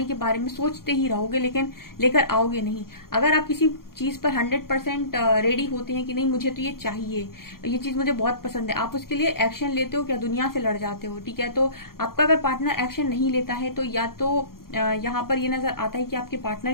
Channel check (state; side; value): late; right; 0.92 ms